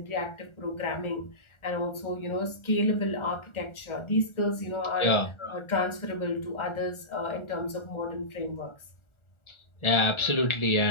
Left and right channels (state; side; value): late; right; 1.4 ms